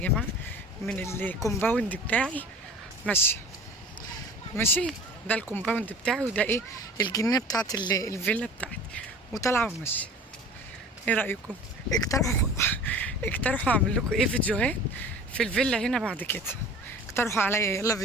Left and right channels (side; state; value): both; normal; correlation 0.42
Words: جماعه من الكومباوند بتاعي. ماشيه ماشي، ده الكومباوند بتاعي، وده ايه، الجنينه بتاعت الفيلا بتاعتي، وطالعه وماشيه. ايه رايكم؟ اقترحوا اقترحوا اعمل لكم ايه فيديوهات في الفيلا هنا بعد كده. اقترحوا عليا يلا